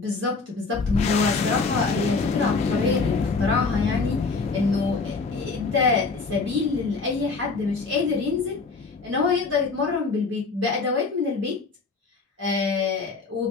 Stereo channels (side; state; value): right; quieter; 4.3 dB